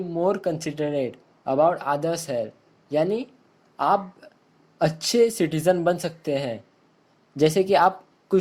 more considerate about others' health. यानी आप अच्छे citizen बन सकते हैं। जैसे कि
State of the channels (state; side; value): identical; both; correlation 1.00